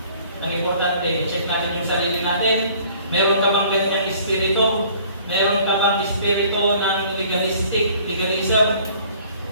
ang importante, check natin yung sarili natin. Meron ka bang ganyang espiritu? Meron ka bang espiritu ng legalism?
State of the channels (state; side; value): inverted; both; correlation -0.54